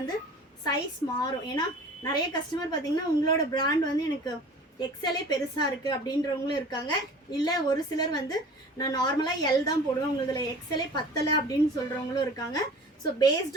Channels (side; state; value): both; normal; correlation 0.43